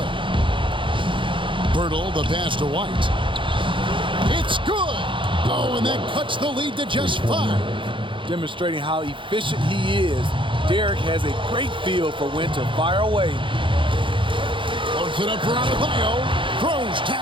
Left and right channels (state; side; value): late; left; 0.24 ms